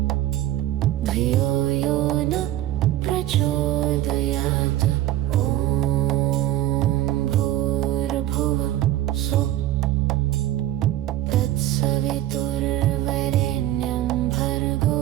धियो यो नः प्रचोदयात्। ॐ भूर्भुवः स्वः तत्सवितुर्वरेण्यं भर्गो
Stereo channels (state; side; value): quieter; left; 13.8 dB